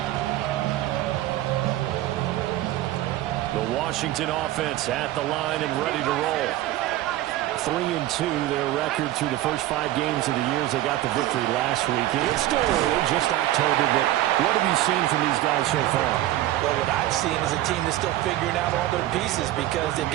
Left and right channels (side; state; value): left; quieter; 14.9 dB